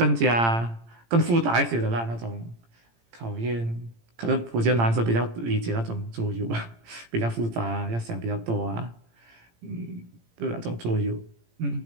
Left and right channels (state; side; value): late; left; 17 ms